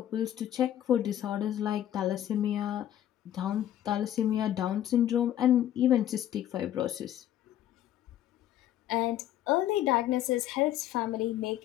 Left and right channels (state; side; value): quieter; right; 11.8 dB